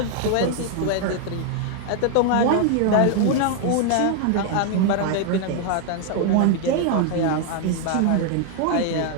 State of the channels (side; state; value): both; different; correlation 0.00